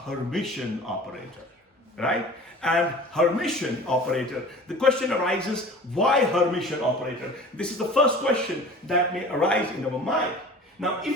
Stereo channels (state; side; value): normal; both; correlation 0.42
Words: operator, right? And Hermitian operator, the question arises, why Hermitian operator? This is the first question that may arise in our mind. Now,